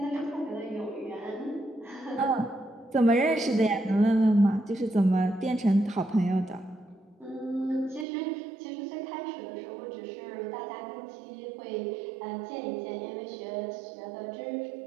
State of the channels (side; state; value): left; drops out; at 8.1 s